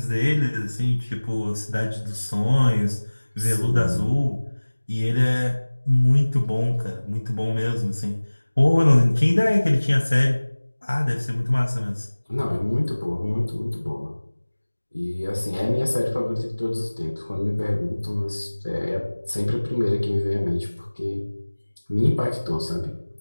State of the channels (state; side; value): inverted; both; correlation -1.00